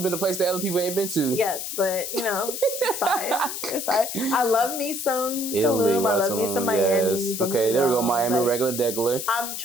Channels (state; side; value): noise; left; hiss, 5 dB below the sound